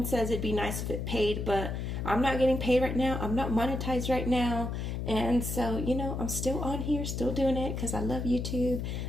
says it'd be nice if it paid, but I'm not getting paid right now. I'm not monetized right now. And so, I'm still on here, still doing it because I love YouTube.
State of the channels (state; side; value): noise; left; hum, 3 dB below the sound